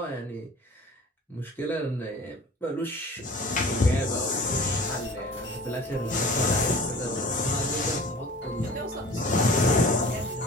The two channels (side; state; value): both; normal; correlation 0.43